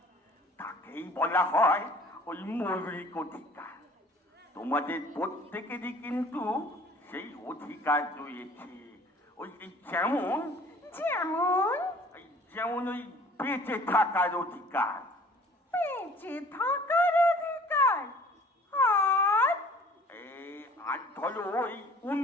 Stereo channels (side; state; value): both; normal; correlation 0.51